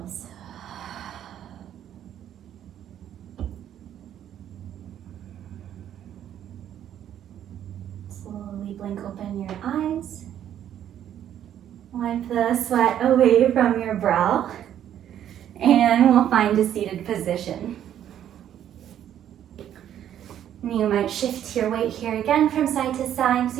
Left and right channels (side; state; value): left; quieter; 10.5 dB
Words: Slowly blink open your eyes. Wipe the sweat away from your brow. And we'll find a seated position. You might shift your weight here again from side to side